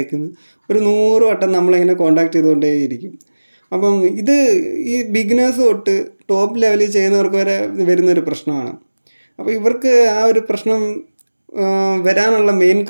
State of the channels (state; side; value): inverted; both; correlation -1.00